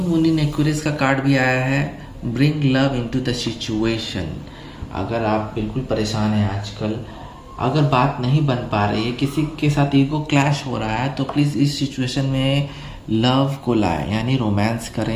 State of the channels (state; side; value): identical; both; correlation 1.00